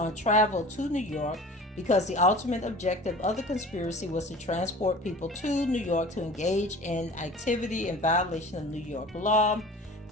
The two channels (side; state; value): both; normal; correlation 0.41